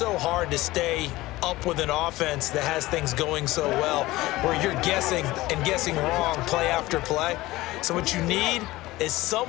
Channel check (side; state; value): right; quieter; 18.5 dB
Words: hard to stay up with an offense that has things going so well, where you're guessing and guessing wrong play after play. So what you need is